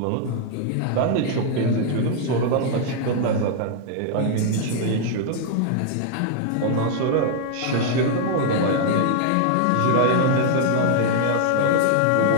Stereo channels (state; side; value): different; both; correlation 0.00